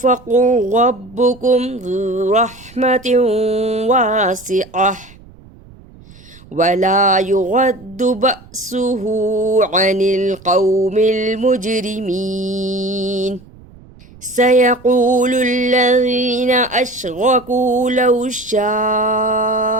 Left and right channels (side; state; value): right; noise; rumble, 23 dB below the sound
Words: ربكم ذو رحمة واسعة ولا يرد بأسه عن القوم المجرمين. سيقول الذين أشركوا لو شاء